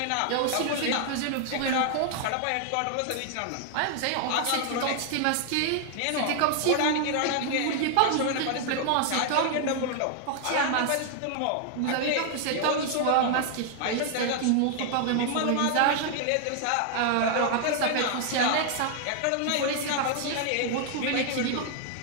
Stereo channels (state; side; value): different; both; correlation 0.00